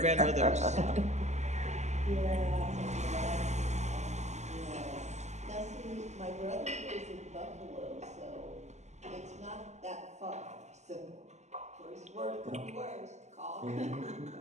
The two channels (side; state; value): left; late; 0.33 ms